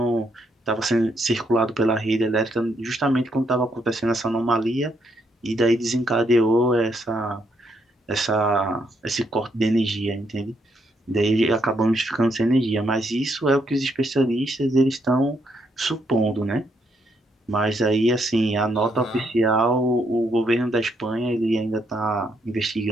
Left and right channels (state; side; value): normal; both; correlation 0.75